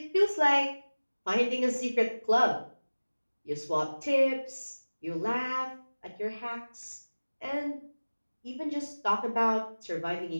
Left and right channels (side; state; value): both; inverted; correlation -1.00